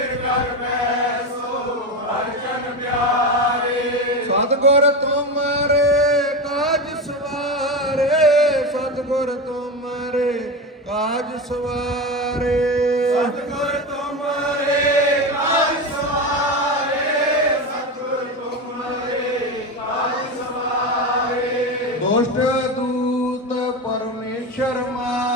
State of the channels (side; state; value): both; normal; correlation 0.20